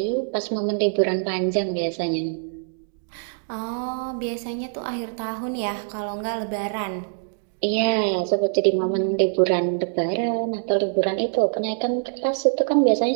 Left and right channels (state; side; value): silent; left; digital silence